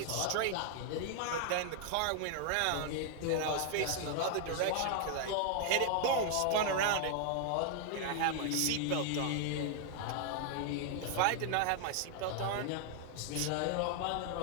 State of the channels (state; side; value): different; both; correlation 0.00